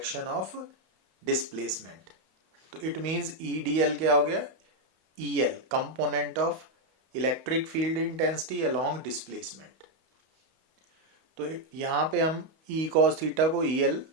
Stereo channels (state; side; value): late; left; 31 ms